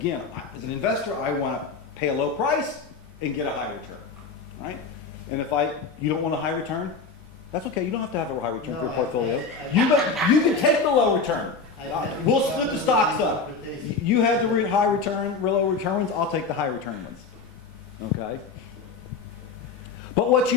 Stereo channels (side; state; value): right; quieter; 4.6 dB